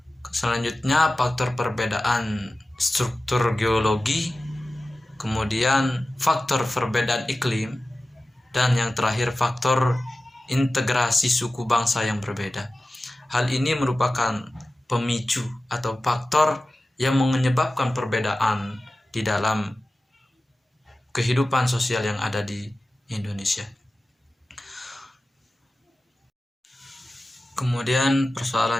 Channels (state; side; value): normal; both; correlation 0.95